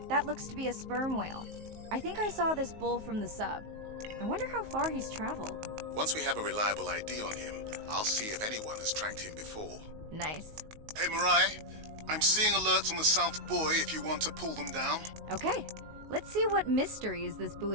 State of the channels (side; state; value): left; late; 19 ms